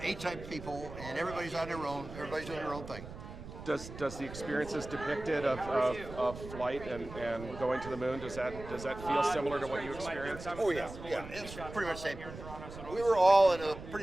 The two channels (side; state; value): right; noise; rumble, 12 dB below the sound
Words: A-type people, and everybody's on their own. Everybody's doing their own thing. Does the experiences depicted of flight and going to the moon, does that feel similar to what you experienced? Oh yeah, it's pretty much the same. We were all in a